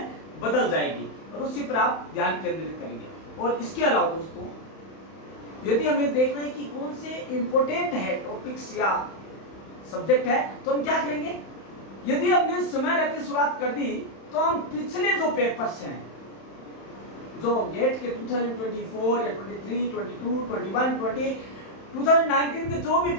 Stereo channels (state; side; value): late; right; 31 ms